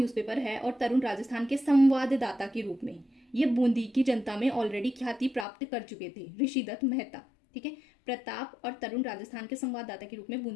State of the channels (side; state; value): right; drops out; at 5.5 s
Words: है और तरुण राजस्थान के संवाददाता के रूप में ये बूंदी की जनता में ऑलरेडी ख्याति प्राप्त कर चुके थे, ऋषि दत्त मेहता। ठीक है, प्रताप और तरुण राजस्थान के संवाददाता के रूप में